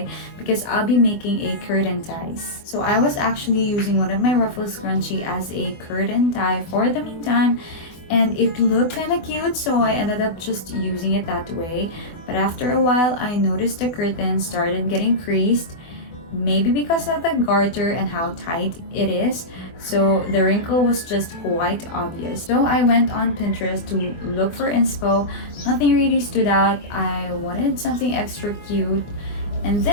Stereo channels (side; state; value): right; late; 24 ms